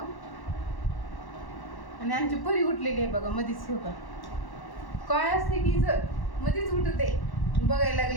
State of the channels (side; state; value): right; late; 1.1 ms